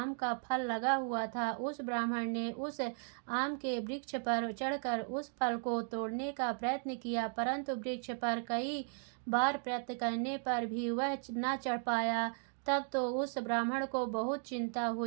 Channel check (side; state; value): left; silent; 54 dB below the other